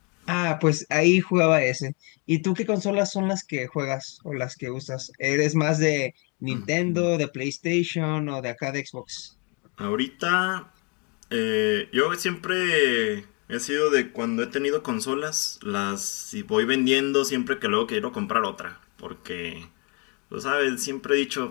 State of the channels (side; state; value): right; quieter; 33.2 dB